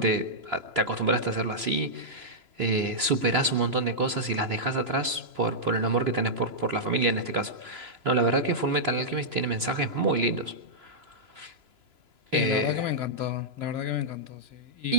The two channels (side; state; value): left; late; 3.0 ms